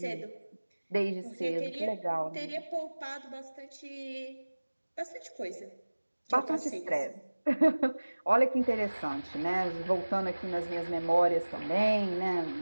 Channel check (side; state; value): both; inverted; correlation -1.00